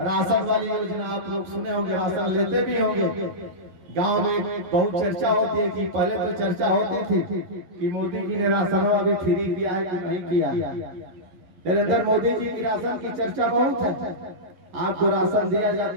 राशन वाली योजना आप लोग सुने होंगे, राशन लेते भी होंगे। गांव में बहुत चर्चा होती है कि पहले तो चर्चा होती थी कि मोदी जी ने राशन अभी फ्री दिया है कि नहीं किया। नरेंद्र मोदी जी की राशन की चर्चा बहुत है, आपको राशन दिया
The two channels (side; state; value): left; late; 11 ms